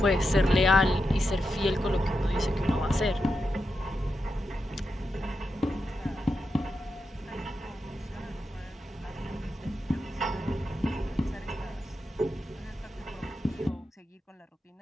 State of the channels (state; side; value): normal; both; correlation 0.87